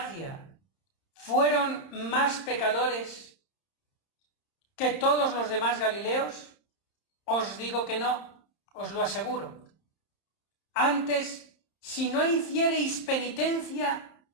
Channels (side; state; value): right; late; 30 ms